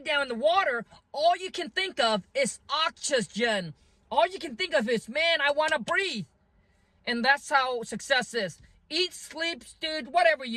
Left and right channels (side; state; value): both; identical; correlation 1.00